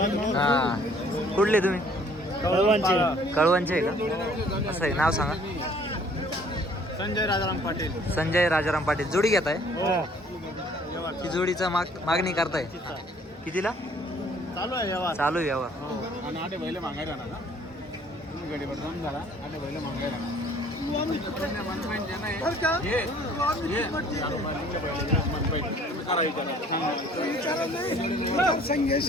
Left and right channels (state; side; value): normal; both; correlation 0.57